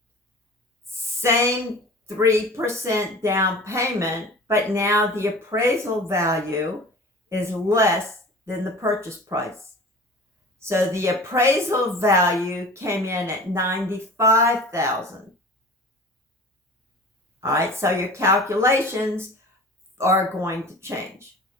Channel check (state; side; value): normal; both; correlation 0.39